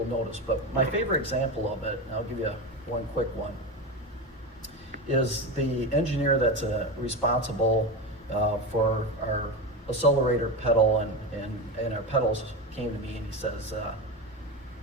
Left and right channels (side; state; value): both; normal; correlation 0.19